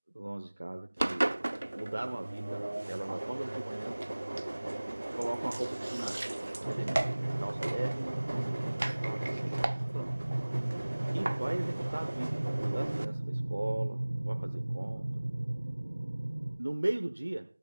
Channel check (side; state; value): both; inverted; correlation -1.00